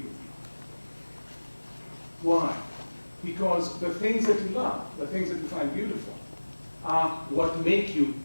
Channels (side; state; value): both; inverted; correlation -1.00